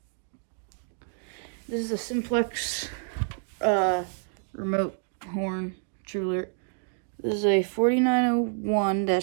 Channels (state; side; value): silent; left; digital silence